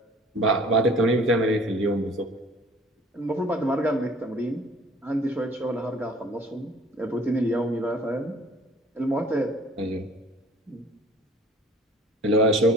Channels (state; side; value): normal; both; correlation 0.50